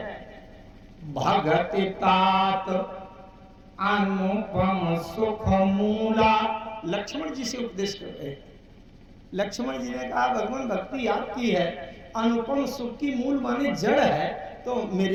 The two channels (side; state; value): both; identical; correlation 1.00